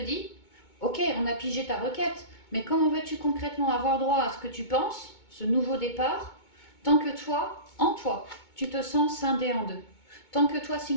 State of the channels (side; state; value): right; late; 2.2 ms